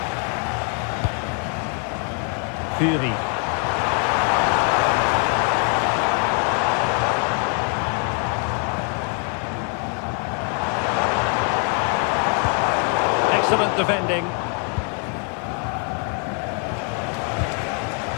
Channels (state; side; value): quieter; right; 37.6 dB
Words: Fury. Excellent defending.